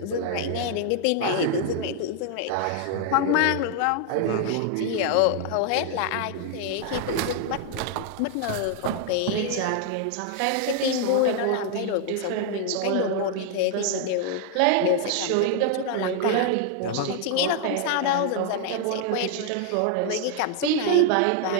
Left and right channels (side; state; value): both; different; correlation 0.00